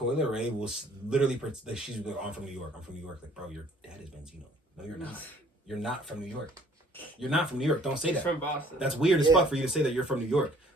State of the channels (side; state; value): both; normal; correlation 0.57